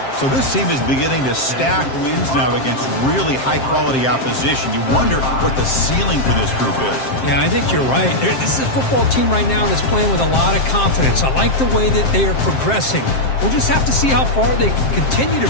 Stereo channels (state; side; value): late; right; 7.6 ms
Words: So this team is beginning to stack wins now against really high-quality opposition. You wonder what the ceiling for this group is. Yeah, I think you're right. This is a football team right now that's playing with a lot of confidence. I like the way that they are progressing. We'll just have to see how far they can continue to